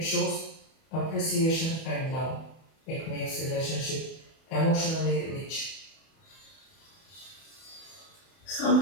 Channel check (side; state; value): right; late; 31 ms